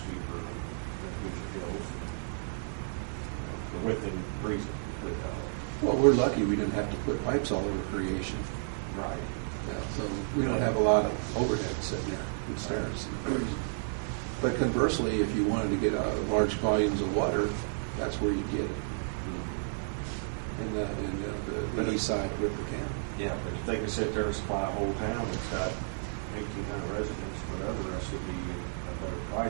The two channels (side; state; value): left; silent; 57 dB below the other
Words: than Hoosier Hills, within reason. Well, we're lucky we didn't have to put pipes all over Creation. Right. Yeah, so we don't have a lot of overhead sitting there in stairs. But conversely, if you wanted to get large volumes of water, that's where you get it. In the east side of River County. Yeah, but if they can sit there and supply a whole town that's got 1,800 residents, whatever, that should be a better